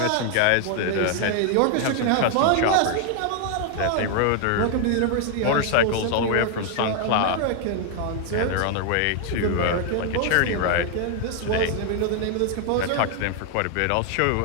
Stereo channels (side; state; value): both; different; correlation 0.00